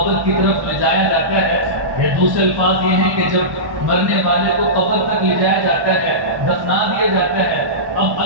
کی طرف لے جایا جاتا ہے، یا دوسرے الفاظ یہ ہیں کہ جب مرنے والے کو قبر تک لے جایا جاتا ہے، دفنا دیا جاتا ہے، اب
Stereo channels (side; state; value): left; late; 1.1 ms